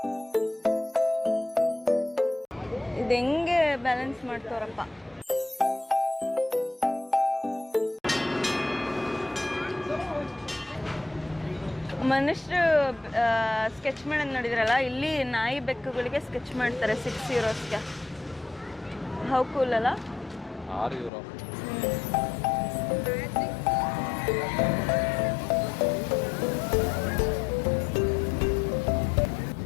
ಇದು ಹೆಂಗೆ ಬ್ಯಾಲೆನ್ಸ್ ಮಾಡ್ತಾರಪ್ಪ. ಮನುಷ್ಯರು ಸ್ಕೆಚ್ ಮಾಡೋದು ನೋಡಿದ್ರಲ್ಲ, ಇಲ್ಲಿ ನಾಯಿ ಬೆಕ್ಕುಗಳಿಗೆ ಸ್ಕೆಚ್ ಮಾಡ್ತಾರೆ 6 euros. ಹೌ ಕೂಲ್ ಅಲ್ಲ? 6 euro.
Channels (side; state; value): right; drops out; at 21.1 s